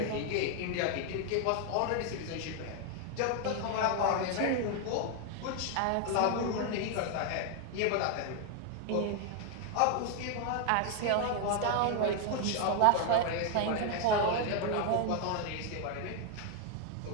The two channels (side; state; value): both; different; correlation 0.00